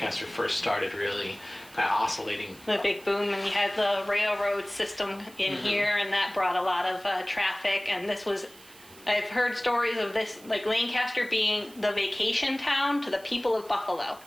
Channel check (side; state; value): right; noise; hiss, 22 dB below the sound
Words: first started really kind of oscillating. The big boom, and you had the railroad system in here, and that brought a lot of traffic, and this was, I've heard stories of this, like Lancaster being the vacation town to the people of Buffalo.